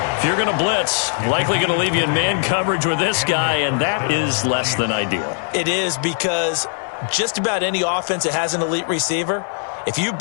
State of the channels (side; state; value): right; silent; 64 dB below the other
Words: If you're going to blitz, likely going to leave you in man coverage with this guy, and that is less than ideal. It is, because just about any offense that has an elite receiver, if you